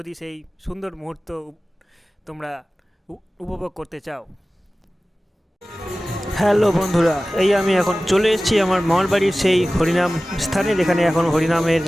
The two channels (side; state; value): both; normal; correlation 0.97